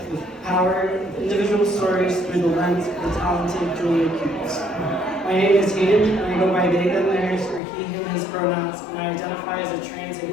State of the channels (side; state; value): right; drops out; at 7.6 s